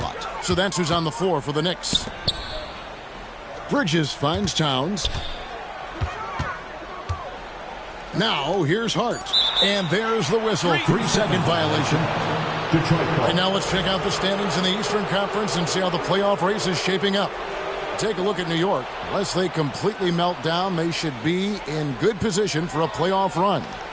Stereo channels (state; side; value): identical; both; correlation 1.00